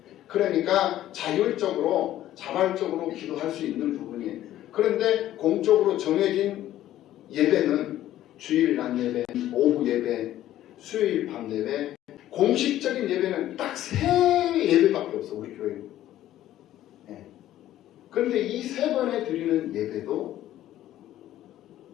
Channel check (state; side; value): quieter; right; 13.3 dB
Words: 그러니까 자율적으로 자발적으로 기도할 수 있는 부분이에요. 그런데 공적으로 정해진 예배는 주일 낮 예배, 오후 예배, 수요일 밤 예배, 공식적인 예배는 딱 3예배밖에 없어, 우리 교회는. 네. 그런데 이 3번에 드리는 예배도